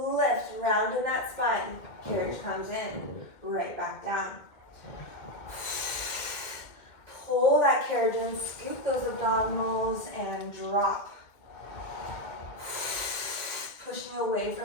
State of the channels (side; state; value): right; late; 2.1 ms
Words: lift. Round in that spine. Carriage comes in. Right back down. Pull that carriage in, scoop those abdominals, and drop. Pushing away